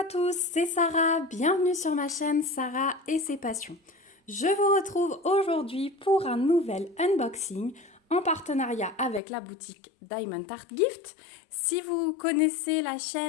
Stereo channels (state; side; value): drops out; right; at 9.2 s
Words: tous, c'est Sarah, bienvenue sur ma chaîne Sarah et ses passions. Je vous retrouve aujourd'hui pour un nouvel unboxing en partenariat avec la boutique Diamond Art Gift. Si vous connaissez la